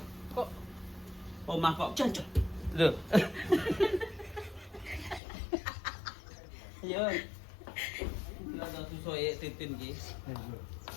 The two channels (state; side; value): drops out; right; at 5.2 s